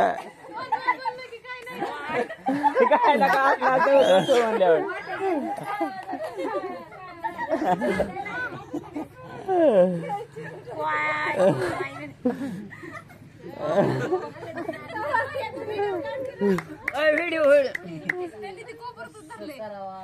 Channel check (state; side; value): identical; both; correlation 1.00